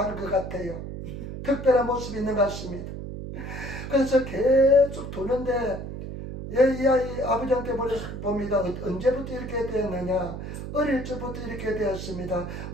것 같아요. 특별한 모습이 있는 것 같습니다. 그래서 계속 도는데 이 아이 아버지한테 봅니다. 언제부터 이렇게 되었느냐. 어릴 적부터 이렇게 되었습니다.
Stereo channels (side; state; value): right; noise; hum, 8 dB below the sound